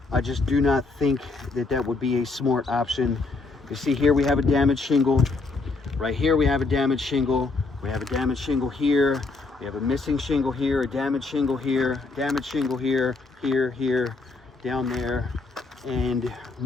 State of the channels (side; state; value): right; quieter; 3.8 dB